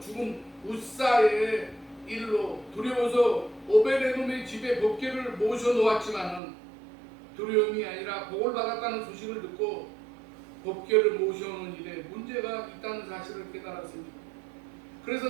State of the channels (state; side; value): drops out; left; at 6.4 s